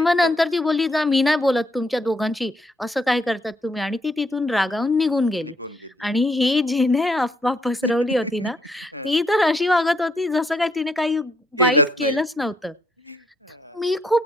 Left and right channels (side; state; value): both; normal; correlation 0.72